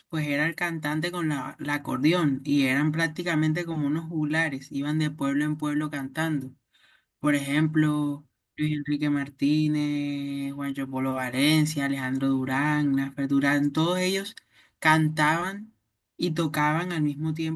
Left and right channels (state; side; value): identical; both; correlation 1.00